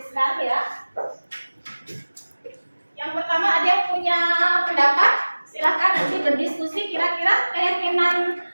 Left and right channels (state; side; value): inverted; both; correlation -1.00